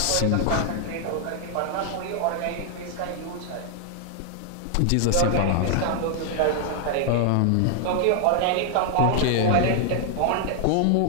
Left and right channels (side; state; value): both; different; correlation 0.00